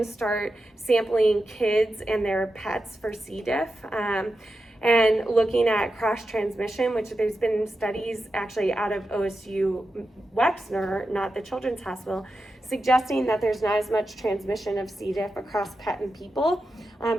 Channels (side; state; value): both; normal; correlation 0.90